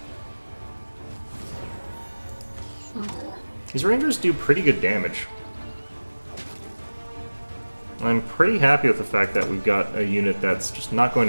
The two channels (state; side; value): inverted; both; correlation -1.00